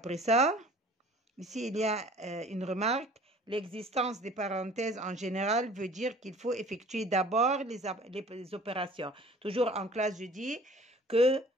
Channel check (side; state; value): both; normal; correlation 0.49